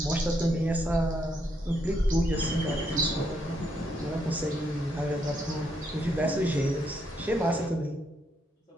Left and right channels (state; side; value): normal; both; correlation 0.76